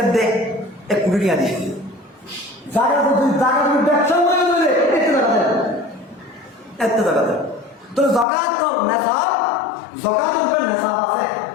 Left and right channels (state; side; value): drops out; right; at 8.2 s